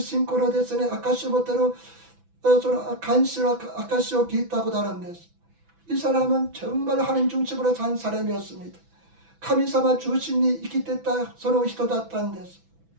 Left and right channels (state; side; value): late; left; 6.1 ms